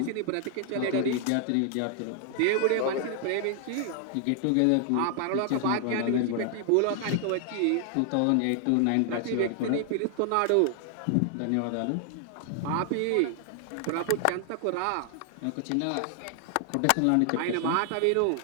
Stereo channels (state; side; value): different; both; correlation 0.00